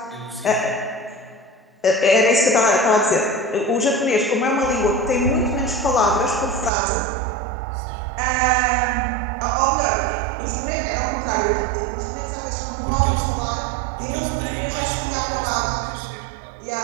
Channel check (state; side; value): drops out; left; at 6.7 s